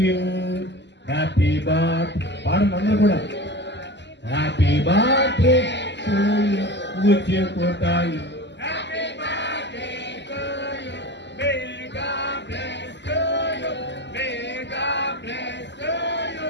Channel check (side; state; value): right; late; 0.51 ms